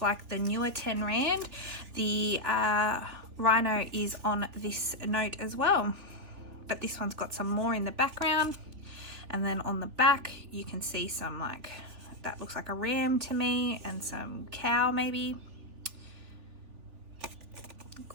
the newer 10 Rand, the rhino is on this note as well, but this one's got some more in the background. And then on the back you can see some, like, that looks like a ram to me, and some cow maybe.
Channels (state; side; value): late; left; 3.4 ms